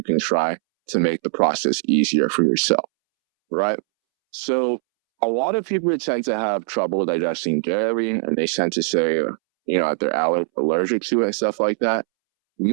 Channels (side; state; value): left; silent; 65 dB below the other